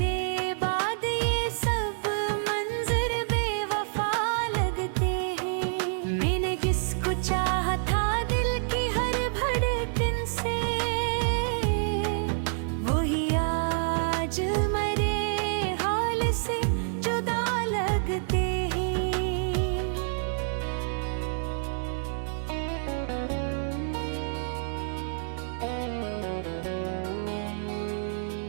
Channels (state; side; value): silent; left; digital silence